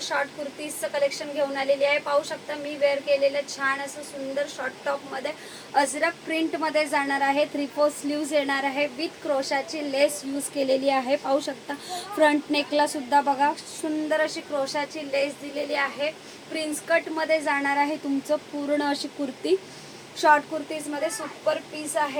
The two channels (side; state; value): both; identical; correlation 1.00